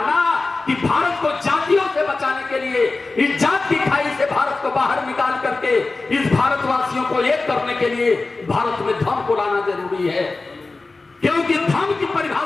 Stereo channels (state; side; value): quieter; right; 3.5 dB